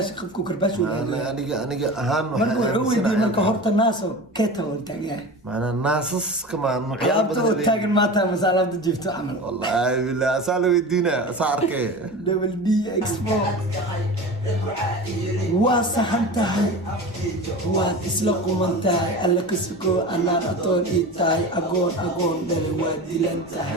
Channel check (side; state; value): both; normal; correlation 0.32